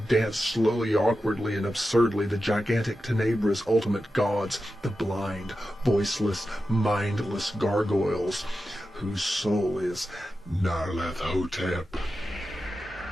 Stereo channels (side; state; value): both; normal; correlation 0.91